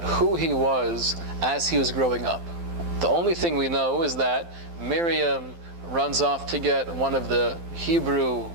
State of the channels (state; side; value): late; left; 12 ms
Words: who he was as he was growing up. The only thing we know is that Miriam runs off to get one of the Hebrew